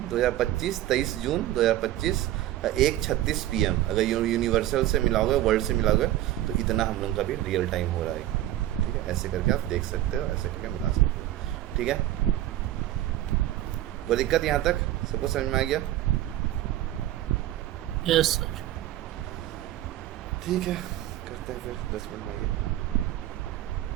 2025 23 जून 2025 1:36 PM। अगर यूनिवर्सल से मिलाओगे, वर्ल्ड से मिलाओगे, तो इतना हम लोग का भी रियल टाइम हो रहा है, ठीक है। ऐसे करके आप देख सकते हो, ऐसे करके मिला सकते हो, ठीक है। कोई दिक्कत यहाँ तक सबको समझ में आ गया? Yes sir. ठीक है, करते हैं फिर 10 मिनट में आइए।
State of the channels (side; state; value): left; quieter; 13.9 dB